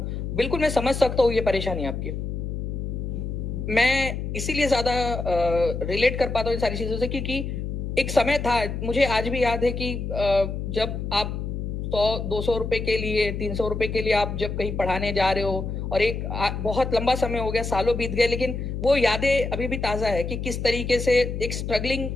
बिल्कुल मैं समझ सकता हूँ ये परेशानी आपकी। मैं इसीलिए ज्यादा रिलेट कर पाता हूँ इन सारी चीजों से, क्योंकि एक समय था, मुझे आज भी याद है कि जब आप 100-200 रुपए के लिए, 300 रुपए के लिए आप जब कहीं पढ़ाने जा रहे हो, और एक बहुत लंबा समय हो गया, सालों बीत गए, लेकिन वो यादें अभी भी ताजा है कि किस तरीके से एक स्ट्रगलिंग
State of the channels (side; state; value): left; noise; hum, 4 dB below the sound